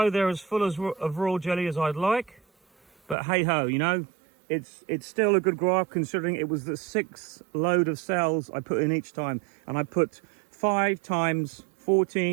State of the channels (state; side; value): drops out; left; at 3.2 s